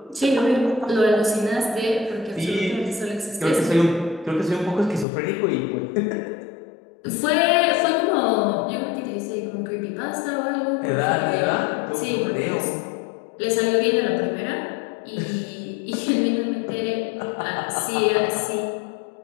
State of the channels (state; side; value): drops out; right; at 5.1 s